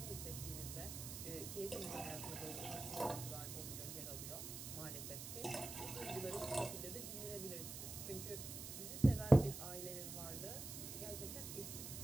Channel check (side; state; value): right; noise; hiss, 7 dB below the sound